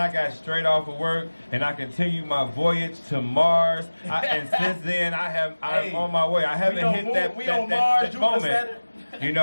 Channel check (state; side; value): inverted; both; correlation -1.00